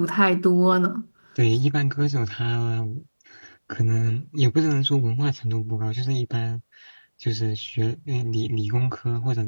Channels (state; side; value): inverted; both; correlation -1.00